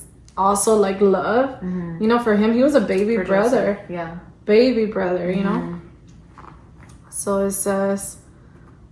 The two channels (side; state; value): both; identical; correlation 1.00